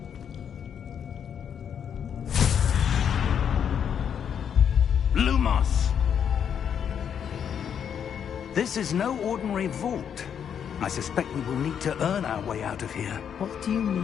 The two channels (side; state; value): right; quieter; 8.1 dB